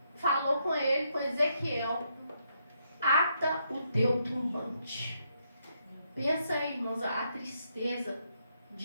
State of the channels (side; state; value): both; inverted; correlation -0.77